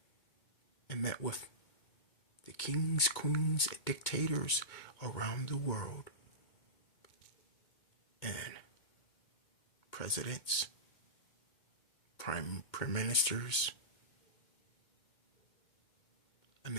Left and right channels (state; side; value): late; right; 2.1 ms